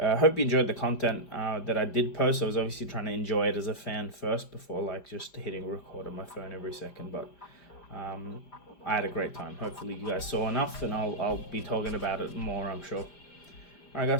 you enjoyed the content that I did post. I was obviously trying to enjoy it as a fan first before like just hitting record on my phone every second, but I had a great time. Hopefully you guys saw enough, and I'll be talking about it more, I'm sure. All right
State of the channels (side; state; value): right; late; 5.0 ms